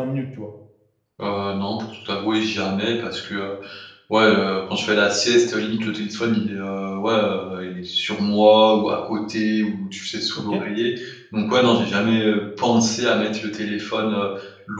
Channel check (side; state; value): both; identical; correlation 1.00